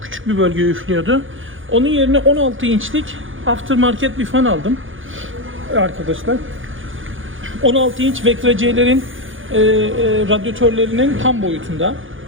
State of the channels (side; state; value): left; late; 0.58 ms